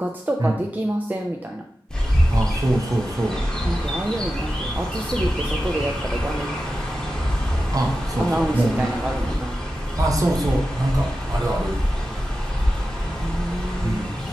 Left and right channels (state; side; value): normal; both; correlation 0.92